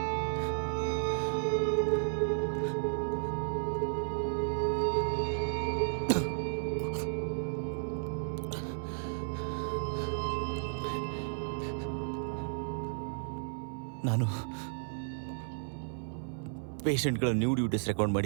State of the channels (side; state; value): left; silent; 55 dB below the other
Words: ನಾನು ಪೇಷಂಟ್ಗಳ ನ್ಯೂ ಡ್ಯೂಟೀಸ್ ರೆಕಾರ್ಡ್